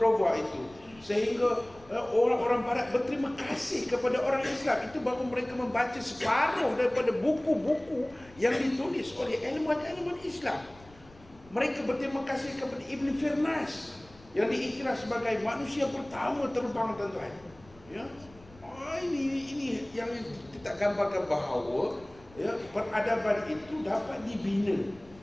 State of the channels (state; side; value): noise; left; rumble, 24 dB below the sound